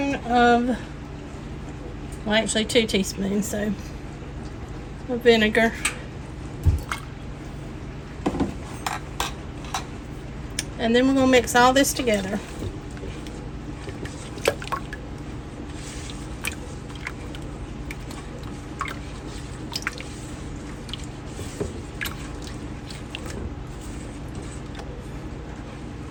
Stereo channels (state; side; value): identical; both; correlation 1.00